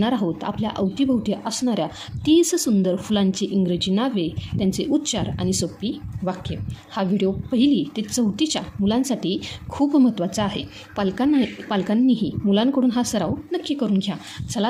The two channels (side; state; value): both; identical; correlation 1.00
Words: आहोत आपल्या अवतीभोवती असणाऱ्या 30 सुंदर फुलांची इंग्रजी नावे, त्यांचे उच्चार आणि सोपी वाक्य. हा व्हिडिओ 1ली ते 4थीच्या मुलांसाठी खूप महत्त्वाचा आहे. पालकांनीही मुलांकडून हा सराव नक्की करून घ्या.